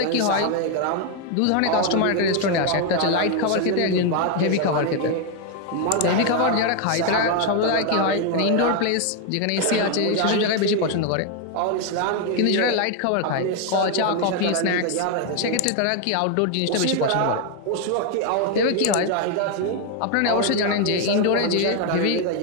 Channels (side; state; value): both; different; correlation 0.01